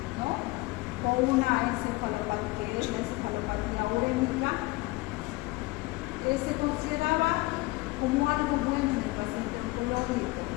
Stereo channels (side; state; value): right; quieter; 22.2 dB